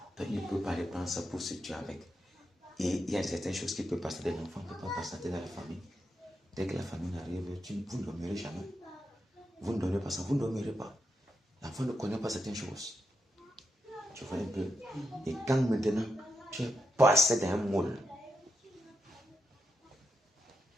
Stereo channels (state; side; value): normal; both; correlation 0.84